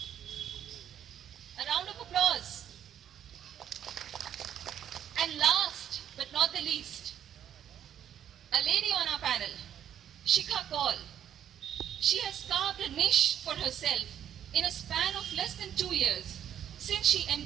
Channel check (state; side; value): quieter; left; 9.8 dB